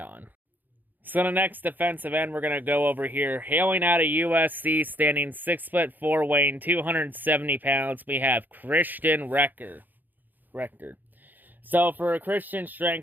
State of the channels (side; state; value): left; late; 0.086 ms